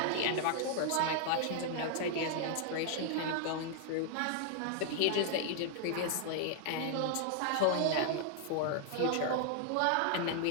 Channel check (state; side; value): different; both; correlation 0.00